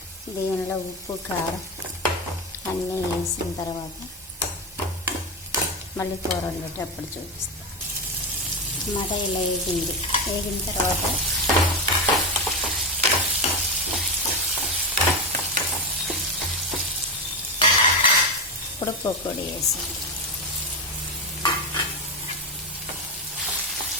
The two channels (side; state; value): both; normal; correlation 0.15